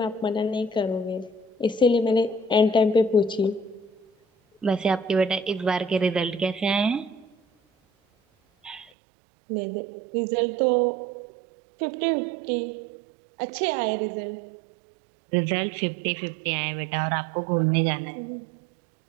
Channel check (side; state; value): left; drops out; at 8.9 s